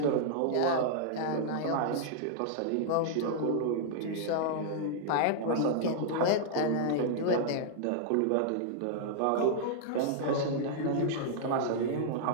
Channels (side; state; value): both; different; correlation -0.01